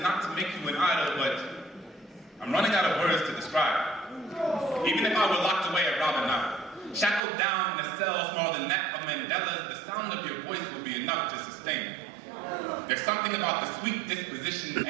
to make you an idol, but I'm running out of words to describe it. Even if I were locked away at Robben Island, shackled down in a cell smaller than that of Mandela's, the sound of your voice would be enough to sustain me. There's something about the sweet disposition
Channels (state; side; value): drops out; left; at 7.2 s